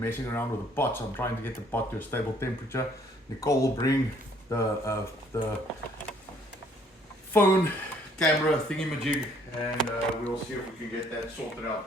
around with the pot, so I'm trying to get the pot to a stable temperature. Nicole will bring the phone camera thingy-majig, and we'll see if we can get that sorted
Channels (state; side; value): normal; both; correlation 0.62